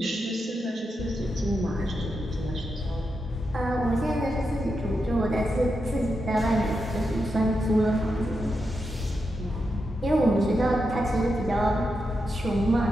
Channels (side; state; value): both; normal; correlation 0.86